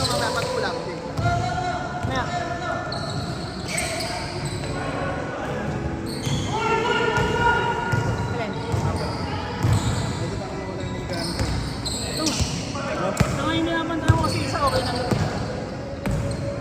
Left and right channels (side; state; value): both; identical; correlation 1.00